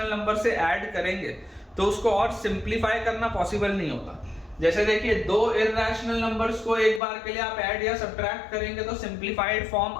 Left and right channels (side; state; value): right; drops out; at 7.0 s